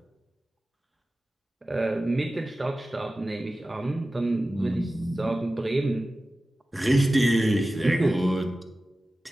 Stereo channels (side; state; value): both; normal; correlation 0.95